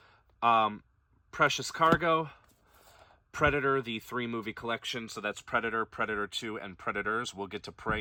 Precious Cargo, Predator, the 3-movie collection. So that's Predator, Predator 2, and Predators. We'll get to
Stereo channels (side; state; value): both; identical; correlation 1.00